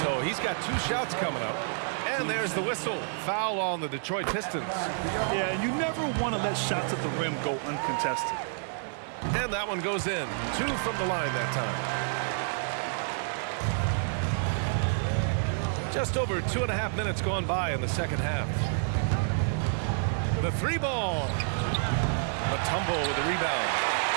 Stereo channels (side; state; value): left; silent; 59 dB below the other